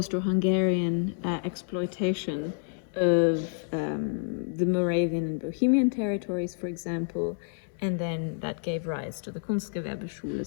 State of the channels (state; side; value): silent; right; 59 dB below the other